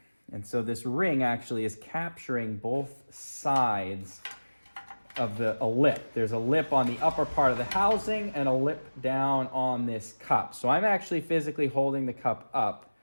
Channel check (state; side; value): inverted; both; correlation -1.00